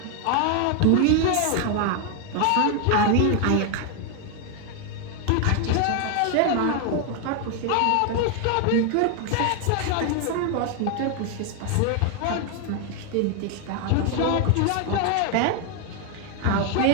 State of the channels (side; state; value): both; different; correlation 0.01